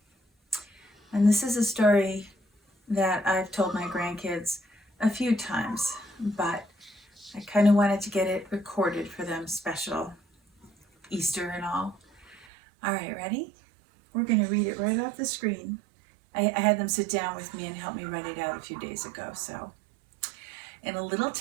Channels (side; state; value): left; drops out; at 12.5 s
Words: And this is a story that I've told my grandkids a few times, but I kind of wanted to get it recorded for them, special Easter and all. All right, ready? We're going to read it right off the screen. I had them sit down with me and help me write it out a few days ago. So, in a little